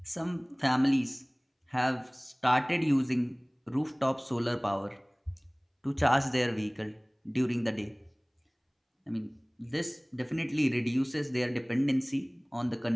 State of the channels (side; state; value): both; identical; correlation 1.00